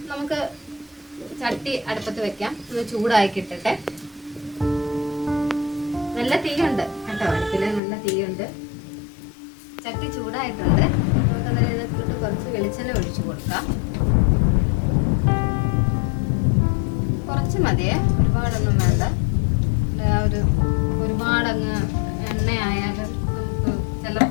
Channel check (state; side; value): drops out; right; at 7.8 s